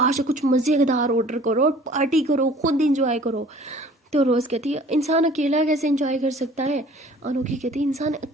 से कुछ मज़ेदार ऑर्डर करो और पार्टी करो, खुद इंजॉय करो। तो रोज़ कहती है इंसान अकेला कैसे इंजॉय कर सकता है? अनोखी कहती है इंसान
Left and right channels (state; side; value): normal; both; correlation 0.50